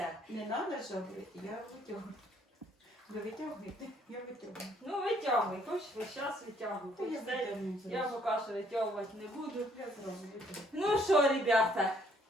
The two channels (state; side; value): normal; both; correlation 0.65